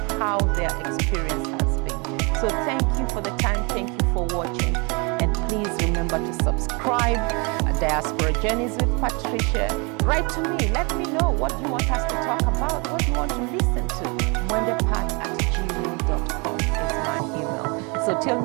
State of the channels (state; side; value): quieter; left; 31.0 dB